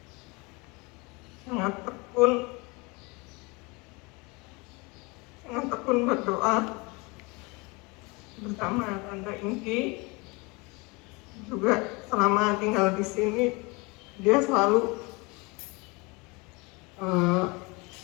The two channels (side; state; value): right; quieter; 27.1 dB